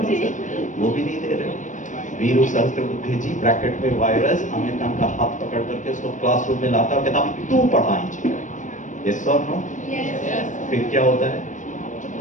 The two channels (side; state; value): right; late; 0.37 ms